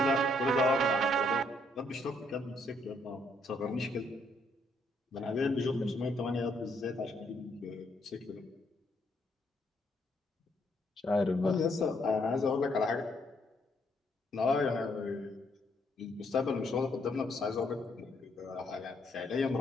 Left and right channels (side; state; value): both; normal; correlation 0.72